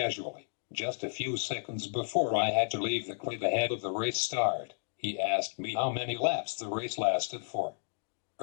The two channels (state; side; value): silent; right; digital silence